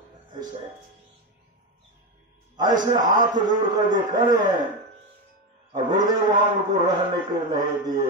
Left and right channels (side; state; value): both; normal; correlation 0.14